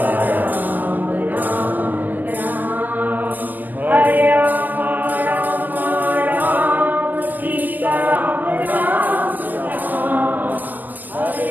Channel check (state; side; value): late; left; 0.084 ms